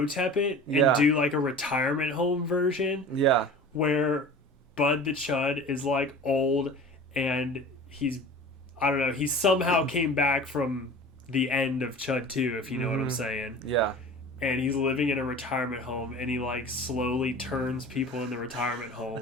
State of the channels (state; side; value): normal; both; correlation 0.39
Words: it and do like a retirement home version. Yeah. Where Bud the Chud is like old and he somehow came back from the end of Chud 2, if you know what I'm saying. Yeah. And he's living in a retirement home and he like slowly turns people in the retirement